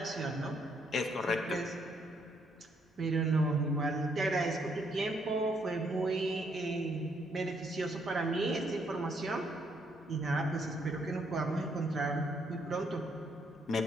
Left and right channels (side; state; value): both; normal; correlation 0.72